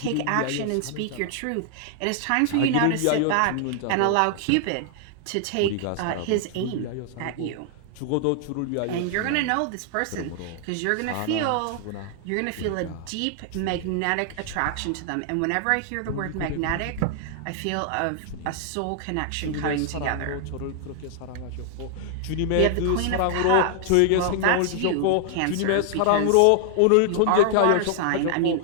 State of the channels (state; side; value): different; both; correlation 0.00